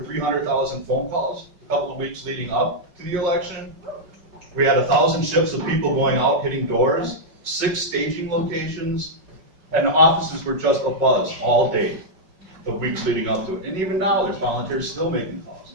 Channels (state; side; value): late; left; 5.3 ms